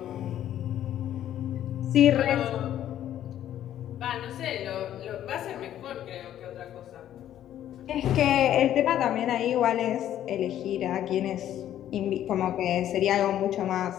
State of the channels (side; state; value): right; quieter; 11.5 dB